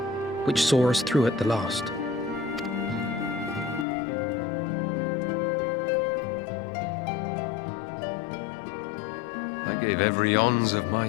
which saw us through at the last. I gave every ounce of my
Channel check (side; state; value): right; drops out; at 3.9 s